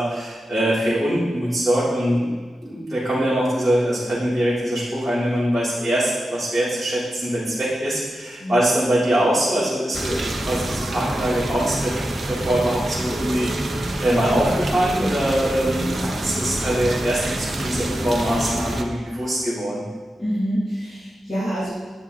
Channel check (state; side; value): normal; both; correlation 0.90